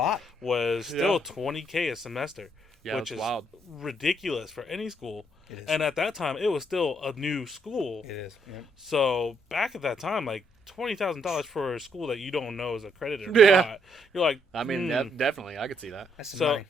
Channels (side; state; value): both; normal; correlation 0.73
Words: was still Yeah. $20K a semester, Yeah, which it's is wild. ridiculous for any school. It is. And at that time, it was still a new school. It is. Yeah. So back at that time, like $20,000 for a school that you don't know is accredited or Yeah. not, you're like, I mean, definitely, I could see that. That's some so money.